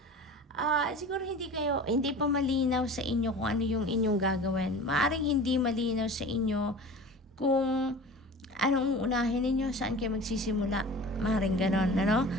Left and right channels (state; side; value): normal; both; correlation 0.38